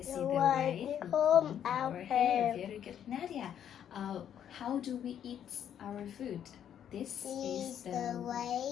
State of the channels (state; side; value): quieter; right; 9.6 dB